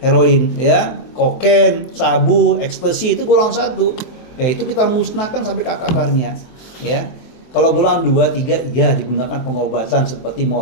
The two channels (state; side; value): late; right; 23 ms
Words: ya, kokain, sabu, ekstasi itu golongan 1. Ya, itu kita musnahkan sampai ke akar-akarnya, ya. Kalau golongan 2, 3 ya digunakan pengobatan seperti